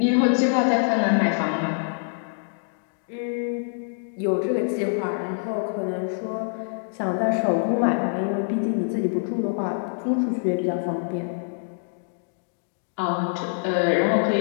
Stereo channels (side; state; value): right; silent; digital silence